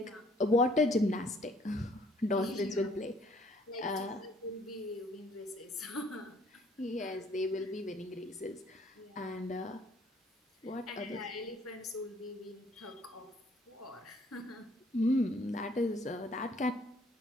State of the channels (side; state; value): both; normal; correlation 0.61